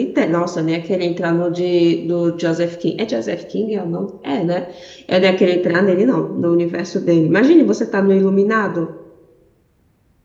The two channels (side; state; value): both; identical; correlation 1.00